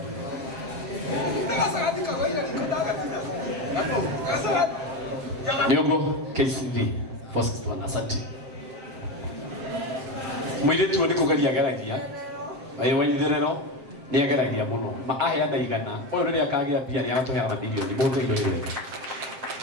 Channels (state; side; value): late; left; 7.6 ms